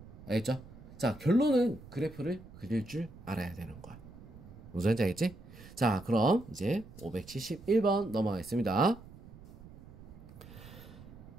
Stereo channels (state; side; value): noise; right; rumble, 18 dB below the sound